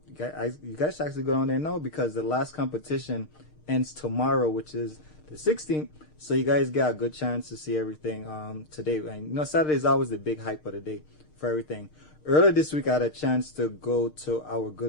guys should actually go down there now, because the last competition ends tomorrow, which is the 16th. So you guys got a good chance to see everything today. And you know, Saturday is always the big hype of the day for everything. Earlier this week, I had a chance to go to our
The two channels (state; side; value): late; right; 6.5 ms